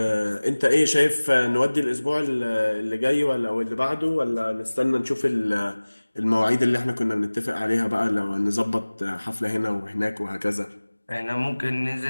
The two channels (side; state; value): both; inverted; correlation -1.00